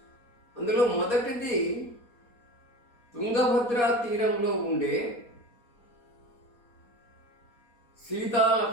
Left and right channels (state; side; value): late; right; 4.2 ms